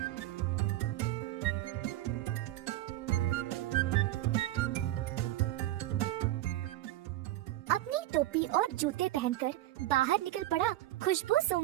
अपनी टोपी और जूते पहनकर बाहर निकल पड़ा खुशबू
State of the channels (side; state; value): left; quieter; 15.2 dB